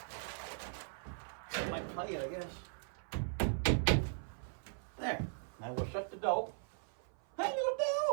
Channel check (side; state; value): left; silent; 52 dB below the other